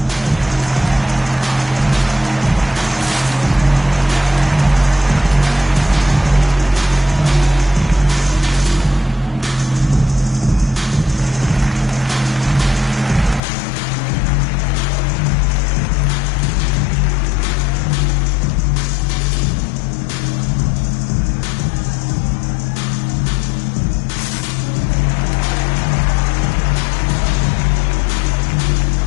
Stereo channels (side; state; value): right; drops out; at 13.4 s